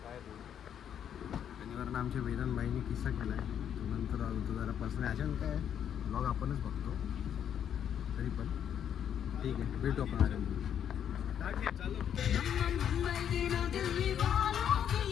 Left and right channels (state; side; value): quieter; right; 9.1 dB